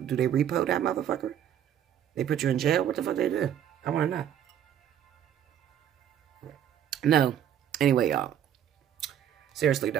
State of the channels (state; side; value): quieter; left; 10.0 dB